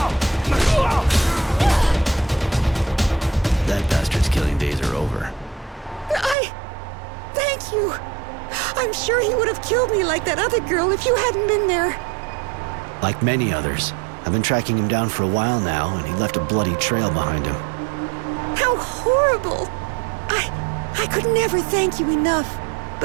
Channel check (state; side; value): drops out; left; at 6.4 s